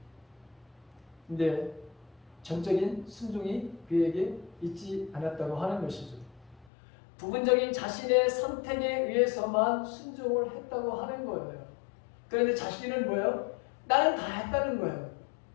근데 전적인 순종이 그에게 있지 않았다고 하는 것이죠. 부분적인 자신의 선택에 의해서만 순종을 했다고 하는 거예요. 그런데 자신은 뭐예요? 나는 다 했다는 거예요.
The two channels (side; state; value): right; drops out; at 6.7 s